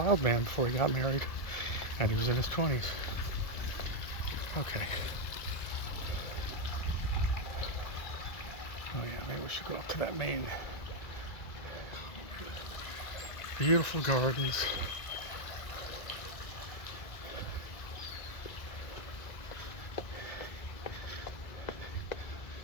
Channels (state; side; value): late; right; 2.0 ms